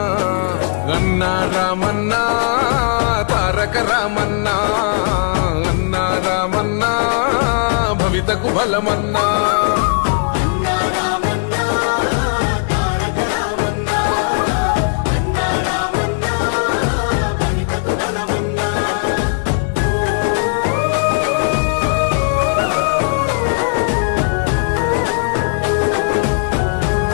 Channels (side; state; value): right; silent; digital silence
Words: అన్నా రామన్నా తారక రామన్నా అన్నా రామన్నా భవితకు బలమన్నా